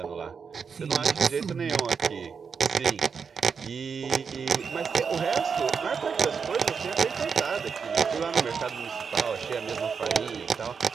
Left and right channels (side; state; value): left; quieter; 6.0 dB